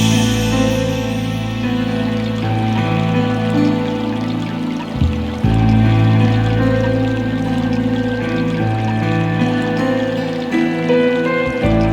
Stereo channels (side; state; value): both; identical; correlation 1.00